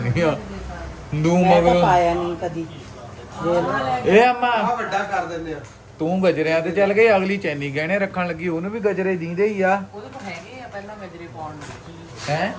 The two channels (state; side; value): identical; both; correlation 1.00